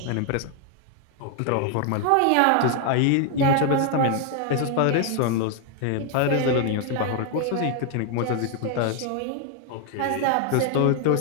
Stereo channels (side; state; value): both; different; correlation 0.00